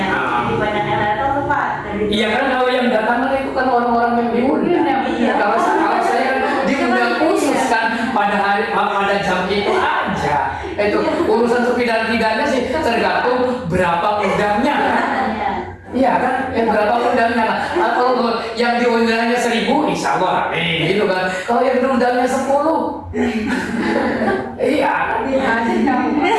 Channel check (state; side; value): identical; both; correlation 1.00